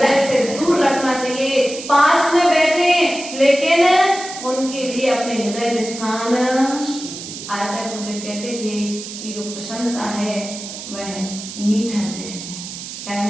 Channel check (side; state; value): right; noise; hiss, 10 dB below the sound